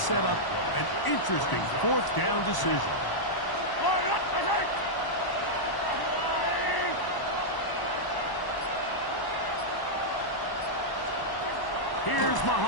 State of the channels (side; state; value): right; late; 1.0 ms